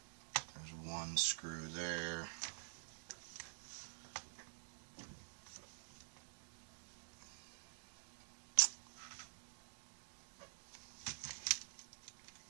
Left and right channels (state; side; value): silent; left; digital silence